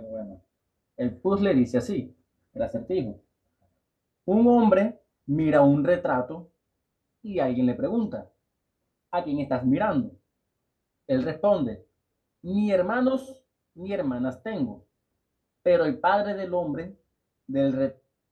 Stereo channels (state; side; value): identical; both; correlation 1.00